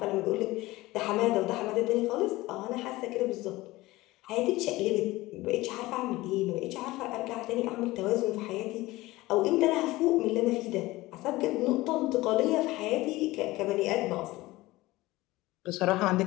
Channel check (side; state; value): right; quieter; 19.1 dB